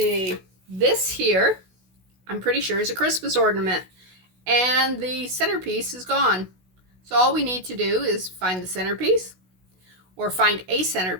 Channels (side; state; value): left; late; 16 ms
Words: This here, I'm pretty sure, is a Christmas ornament, and the centerpiece is gone. So all we need to do is find the centerpiece, or find a